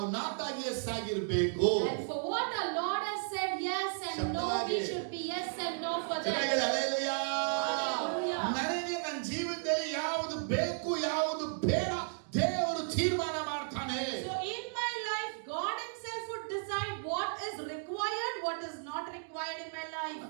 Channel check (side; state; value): left; silent; digital silence